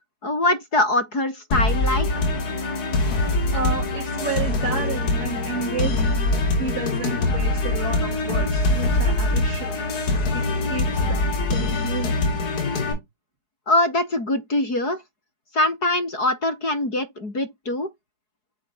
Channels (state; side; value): late; right; 4.7 ms